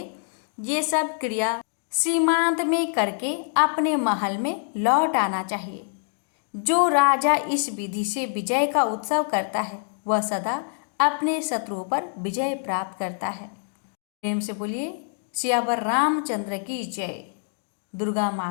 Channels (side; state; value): right; silent; digital silence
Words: ये सब क्रिया सीमांत में करके अपने महल में लौट आना चाहिए। जो राजा इस विधि से विजय का उत्सव करता है वह सदा अपने शत्रुओं पर विजय प्राप्त करता है। प्रेम से बोलिए सियावर रामचंद्र की जय, दुर्गा